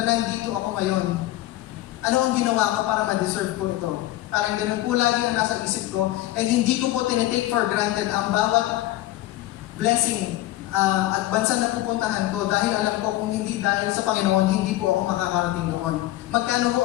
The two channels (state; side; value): quieter; right; 15.9 dB